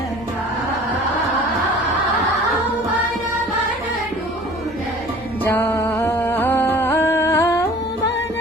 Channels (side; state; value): both; normal; correlation 0.46